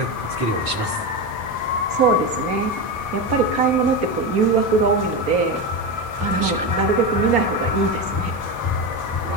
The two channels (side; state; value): left; late; 4.6 ms